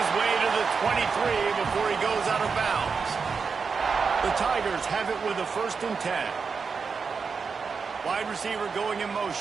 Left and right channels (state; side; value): quieter; left; 5.3 dB